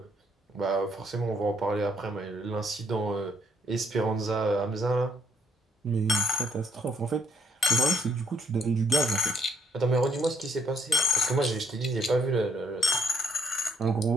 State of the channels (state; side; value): normal; both; correlation 0.67